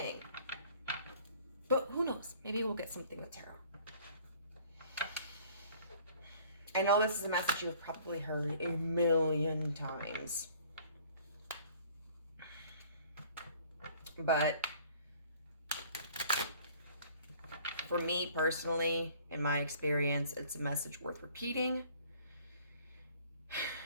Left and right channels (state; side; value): inverted; both; correlation -0.54